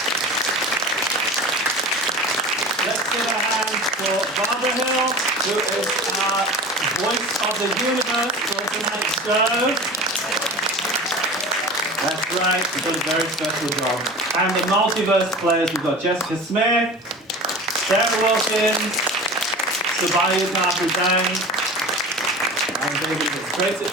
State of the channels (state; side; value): normal; both; correlation 0.35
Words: who is our voice of the universe for tonight's show. That's right, she's done a very special job. And the multiverse players, we've got Jessica Smith, Sarah Wilkins, Sabayu Kapuzan, and David Ibbett. Great.